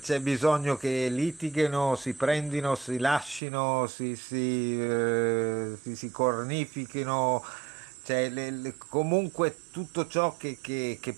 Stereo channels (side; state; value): left; drops out; at 3.4 s